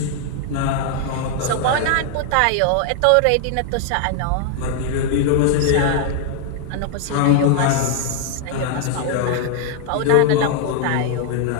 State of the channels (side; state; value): both; different; correlation 0.00